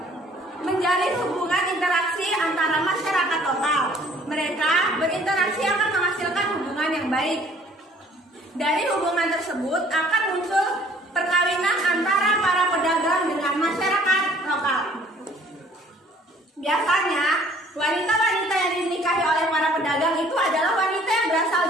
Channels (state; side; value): normal; both; correlation 0.56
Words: menjalin hubungan interaksi antara masyarakat lokal. Mereka berinteraksi akan menghasilkan hubungan yang baik. Dari hubungan tersebut akan muncul perkawinan antara para pedagang dengan masyarakat lokal. Biasanya, wanita-wanita yang dinikahi oleh para pedagang itu adalah wanita yang berasal